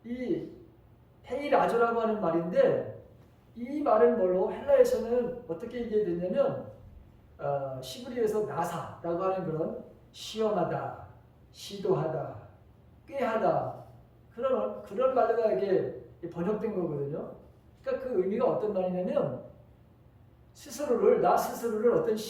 이 헤이라조라고 하는 말인데, 이 말은 뭘로 헬라에서는 어떻게 얘기했냐면 시브리에서 나사라고 하는 그런 시험하다, 시도하다, 꾀하다 그런 말로가 이게 번역된 거거든요. 그러니까 그 의미가 어떤 말이냐면 나 스스로를 어떤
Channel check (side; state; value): both; identical; correlation 1.00